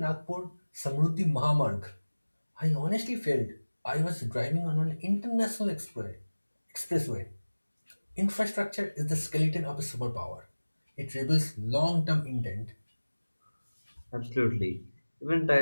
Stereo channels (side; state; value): both; inverted; correlation -1.00